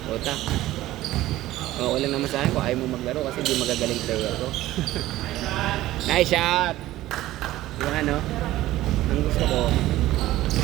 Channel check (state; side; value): quieter; left; 15.7 dB